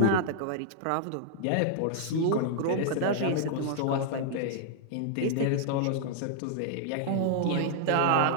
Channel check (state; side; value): different; both; correlation -0.01